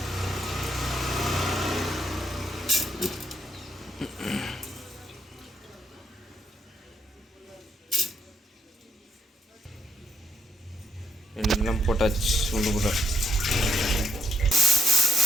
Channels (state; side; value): normal; both; correlation 0.76